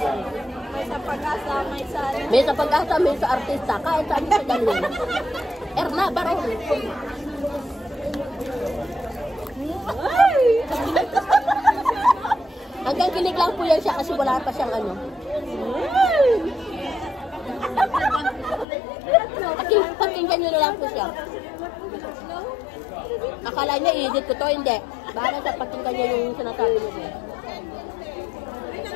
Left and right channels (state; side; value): drops out; right; at 18.7 s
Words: May sa pag-asa, may sa... May sa pag-asa, may sa artista. Kahit saan siya galing. Erna Baron. Hanggang kilig lang po yan siya kasi wala pa siyang ano. Pakinggan nyo na lang po siya. Akala niya i-edit ko to, hindi. Bahala sa pakinggan nyo yung sinasabi mo din.